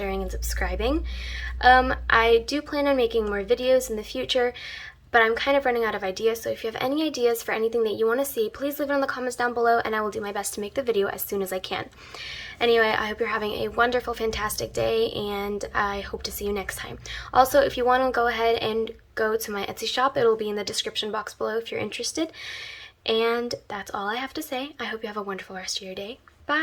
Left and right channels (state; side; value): identical; both; correlation 1.00